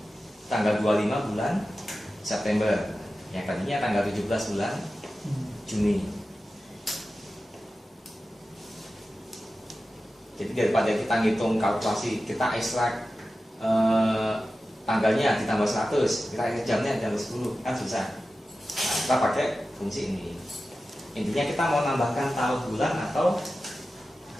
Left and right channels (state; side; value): normal; both; correlation 0.94